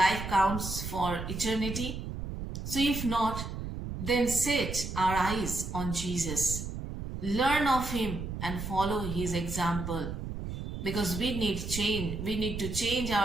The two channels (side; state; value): right; noise; rumble, 6 dB below the sound